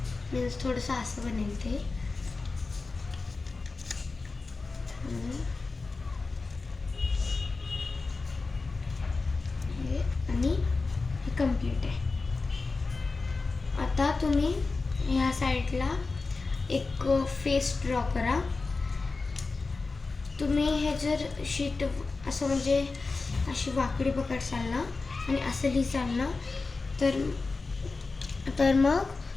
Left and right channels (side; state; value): right; quieter; 3.9 dB